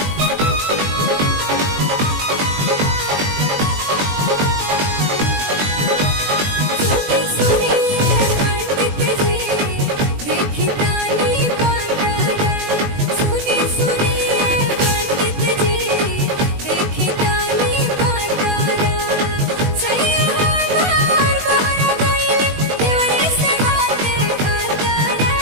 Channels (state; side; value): late; left; 21 ms